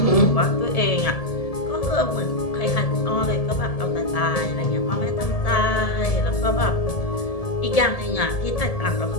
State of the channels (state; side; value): late; right; 1.7 ms